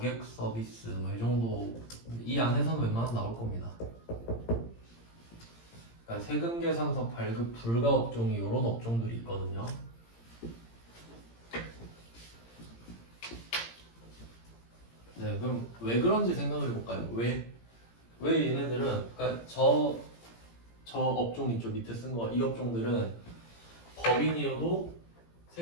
서비스 뭐 이 정도 이 안에서는 웬만하면 나올 겁니다. 그러니까 세금 계산서 발급 불가 업종이 이런 업종들이 있거든요. 네, 그럼 왜 그런지 생각을 해볼까요? 왜 얘네들은 그러니까 저 업종 있죠 밑에 쓴 거 이 업종들은 법인이어도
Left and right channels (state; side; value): late; right; 17 ms